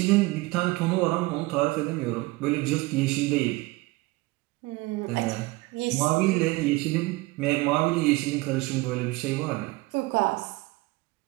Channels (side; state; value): left; quieter; 21.6 dB